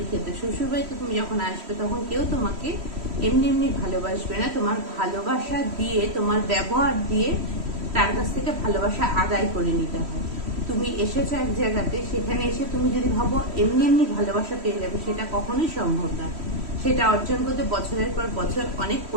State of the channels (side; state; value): left; late; 3.1 ms